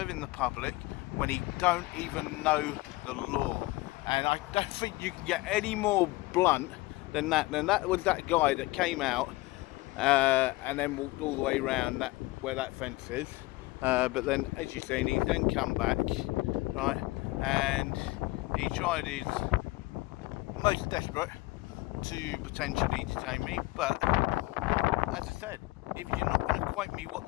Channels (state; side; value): quieter; right; 20.6 dB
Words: the public when he don't even know the law. And I don't think you can get any more blunt than that. And that was that guy that came out and then walked all the way around that where that fence is. But then, as you've seen, he's then come back, right, and he tried his most desperate to potentially detain me. But as I said, if you're not going to quote me what